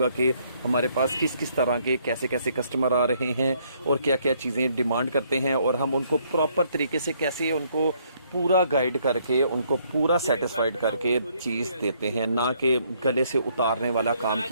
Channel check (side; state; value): both; inverted; correlation -0.68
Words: कि हमारे पास किस किस तरह के कैसे कैसे कस्टमर आ रहे हैं और क्या क्या चीज़ें डिमांड करते हैं, और हम उनको प्रॉपर तरीके से कैसे उनको पूरा गाइड करके उनको पूरा सेटिस्फाइड करके चीज़ देते हैं, ना कि गले से उतारने वाला काम